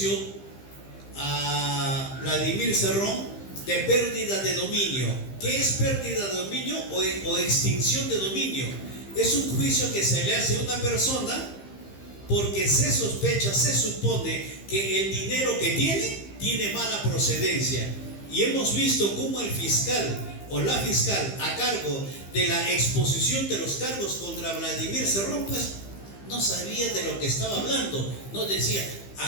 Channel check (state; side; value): late; right; 15 ms